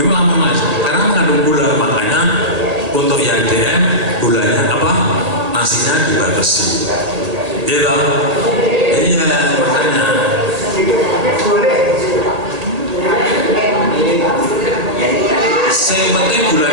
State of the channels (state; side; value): late; left; 1.8 ms